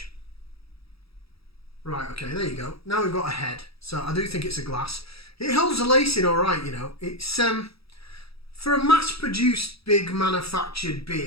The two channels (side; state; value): right; late; 0.77 ms